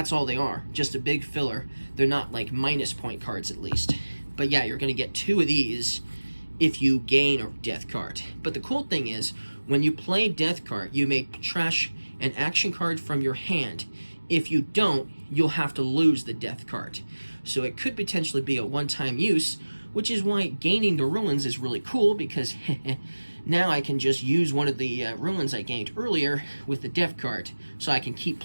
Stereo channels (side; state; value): both; inverted; correlation -1.00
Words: all they are. Just a big filler. They're not like minus point cards, at least. But yeah, you're going to get 2 of these if you gain a Death Card. But the cool thing is, when you play Death Card, you may trash an action card from your hand. If you don't, you'll have to lose the Death Card. So it could potentially be a one-time use, which is why gaining the Ruins is really cool, because now I can just use one of the Ruins I gained earlier with the Death Card, so I can keep